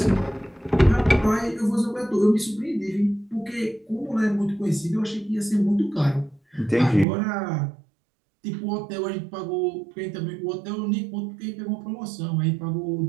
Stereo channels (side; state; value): left; drops out; at 7.1 s